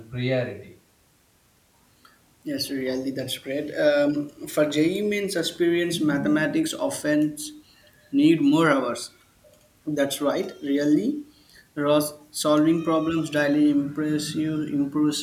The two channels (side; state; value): both; identical; correlation 1.00